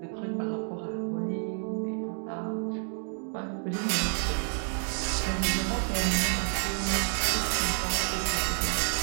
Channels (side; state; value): left; silent; 58 dB below the other